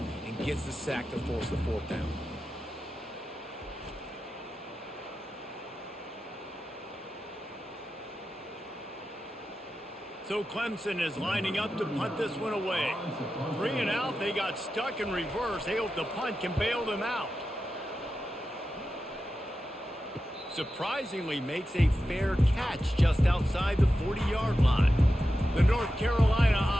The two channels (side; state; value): both; normal; correlation 0.91